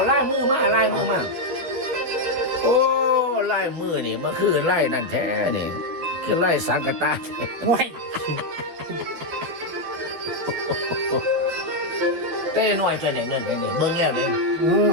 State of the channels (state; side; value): late; left; 12 ms